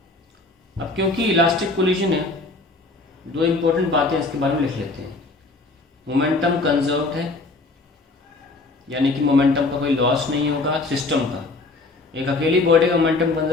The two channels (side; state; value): right; quieter; 3.4 dB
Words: अब क्योंकि इलास्टिक कोलिजन है, दो इम्पोर्टेंट बातें इसके बारे में लिख लेते हैं। मोमेंटम कंजर्व्ड है, यानी कि मोमेंटम का कोई लॉस नहीं होगा सिस्टम का। एक अकेली बॉडी का मोमेंटम